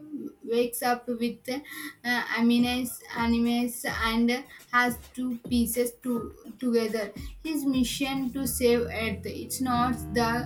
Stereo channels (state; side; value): identical; both; correlation 1.00